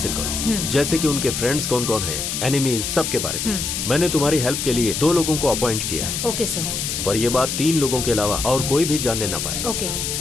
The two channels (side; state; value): left; noise; hiss, 3 dB below the sound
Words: करो, जैसे कि उनके फ्रेंड्स कौन कौन हैं, एनिमीज, सब के बारे में। मैंने तुम्हारी हेल्प के लिए 2 लोगों को अपॉइंट किया है। Okay sir. पर ये बात 3 लोगों के अलावा और कोई भी जानने ना पाए। ओके।